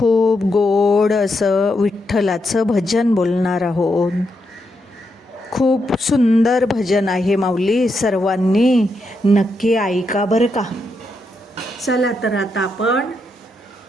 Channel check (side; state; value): both; normal; correlation 0.82